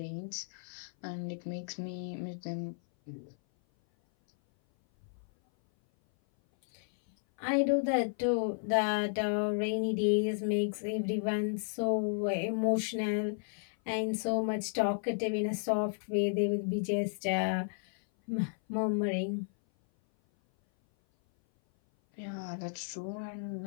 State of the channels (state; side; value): silent; right; 56 dB below the other